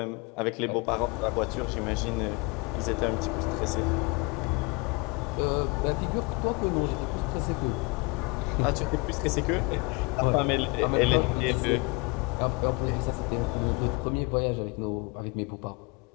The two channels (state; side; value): quieter; right; 29.1 dB